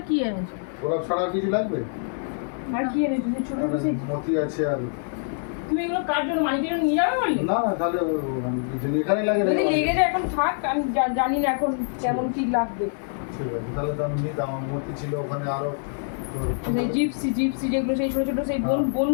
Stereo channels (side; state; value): right; silent; digital silence